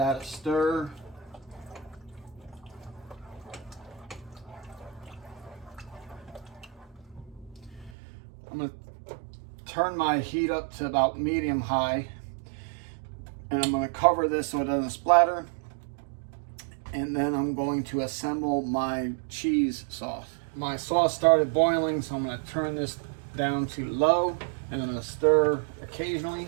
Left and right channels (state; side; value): drops out; left; at 7.9 s